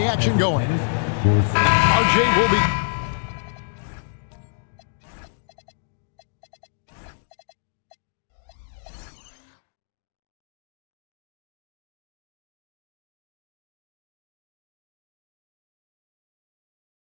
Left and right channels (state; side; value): silent; right; digital silence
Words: action going. RJ will be...